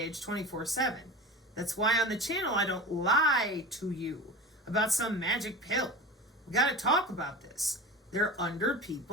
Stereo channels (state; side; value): normal; both; correlation 0.31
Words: 24/7. That's why on the channel I don't lie to you about some magic pill. We gotta talk about this. They're under